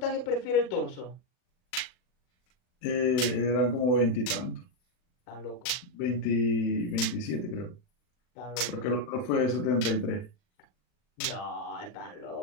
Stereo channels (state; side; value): late; right; 39 ms